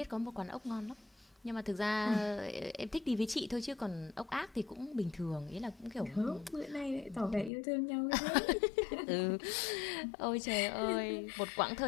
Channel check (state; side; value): drops out; right; at 7.5 s